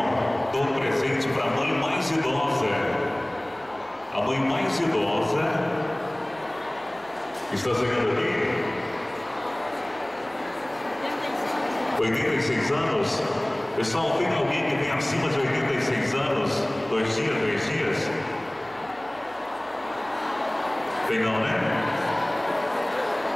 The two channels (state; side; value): noise; right; hum, 26 dB below the sound